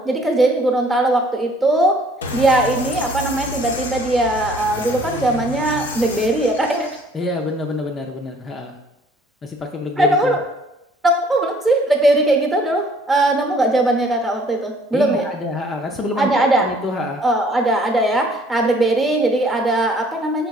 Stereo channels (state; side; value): normal; both; correlation 0.58